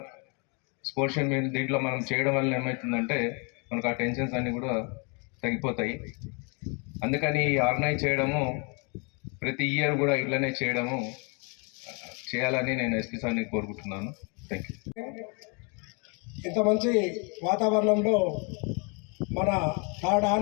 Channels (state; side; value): quieter; right; 34.2 dB